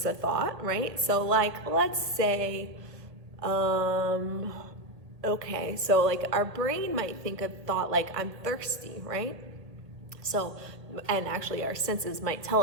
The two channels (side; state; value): left; late; 1.8 ms